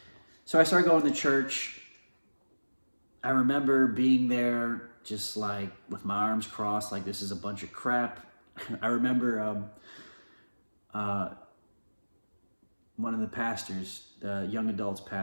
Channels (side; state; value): both; inverted; correlation -1.00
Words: So I started going to church. I remember being there just like with my arms crossed, like this is a bunch of crap. I remember one of the pastors, the young adults